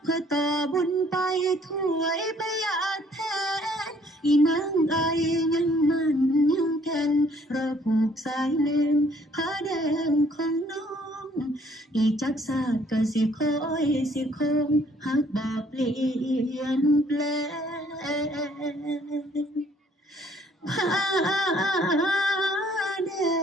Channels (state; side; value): normal; both; correlation 0.62